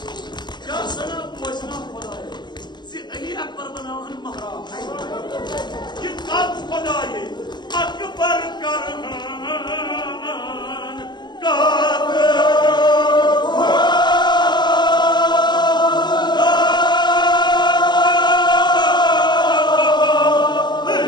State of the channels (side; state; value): right; late; 0.21 ms